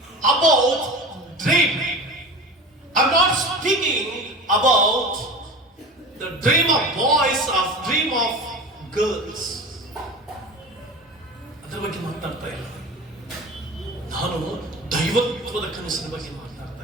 about dream. I am not speaking about the dream of boys, of dream of girls. ಅದರ ಬಗ್ಗೆ ಮಾತಾಡ್ತಾ ಇಲ್ಲ. ನಾನು ದೈವತ್ವದ ಕನಸಿನ ಬಗ್ಗೆ ಮಾತಾಡ್ತಾ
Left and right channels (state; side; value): normal; both; correlation 0.33